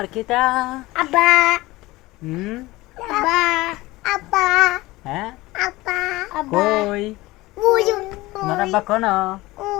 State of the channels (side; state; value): right; quieter; 19.7 dB